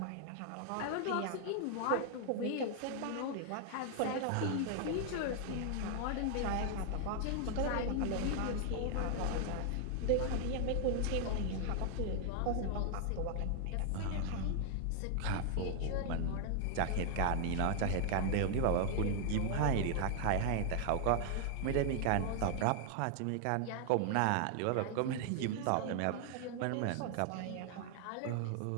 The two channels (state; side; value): different; both; correlation 0.00